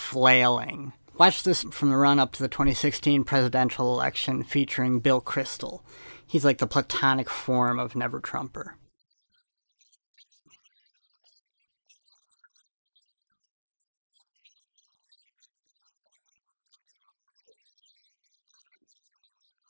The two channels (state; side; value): inverted; both; correlation -1.00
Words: Watch this from the run-up to the 2016 presidential election featuring Bill Kristol. He's like the platonic form of never-Trumper. That's not a fluke. Well, I hope it was a fluke. He beat like 16 people. He did, and that's unfortunate. The Republican Party nominated him. I agree, and some Republicans have refused to support him, and he's going to lose the general election. That's not a fluke. And I think it was